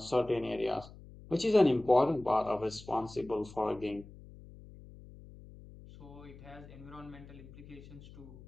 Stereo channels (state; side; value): noise; left; hum, 18 dB below the sound